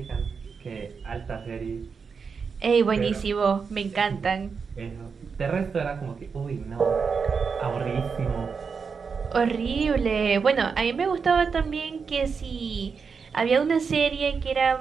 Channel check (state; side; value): quieter; left; 5.6 dB